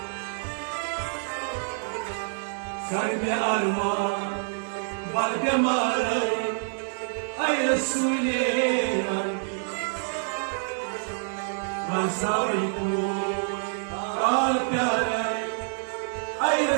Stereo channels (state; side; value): silent; left; digital silence